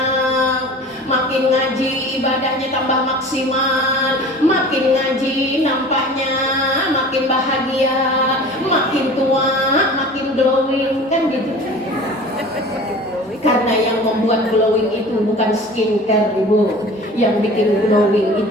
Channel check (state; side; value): normal; both; correlation 0.41